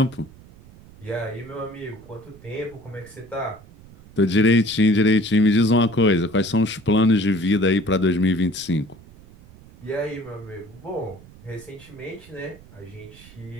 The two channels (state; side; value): noise; right; rumble, 22 dB below the sound